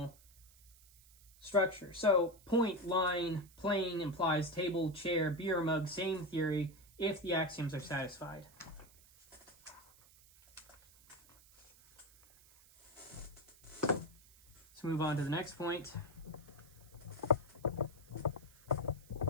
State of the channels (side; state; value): right; noise; hiss, 25 dB below the sound